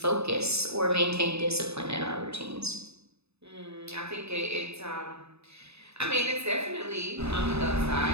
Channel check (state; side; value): late; left; 0.79 ms